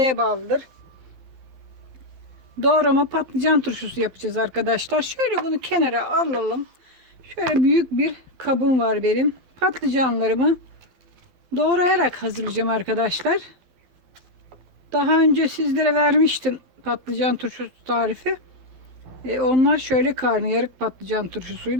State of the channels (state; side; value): late; left; 12 ms